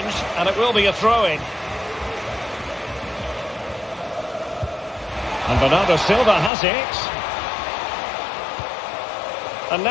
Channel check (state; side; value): drops out; right; at 6.5 s